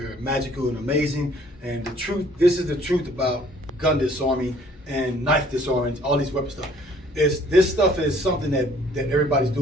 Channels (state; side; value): normal; both; correlation 0.58